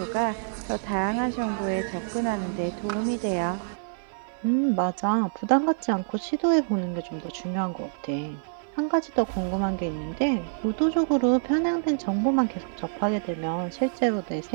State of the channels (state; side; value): silent; left; 60 dB below the other